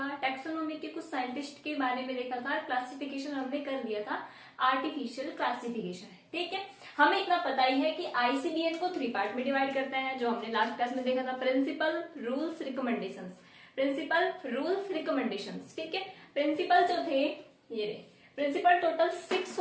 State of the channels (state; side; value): identical; both; correlation 1.00